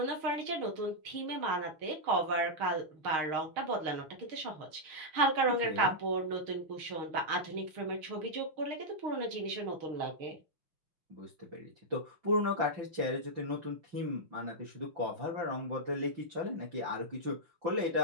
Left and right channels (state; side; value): late; left; 6.4 ms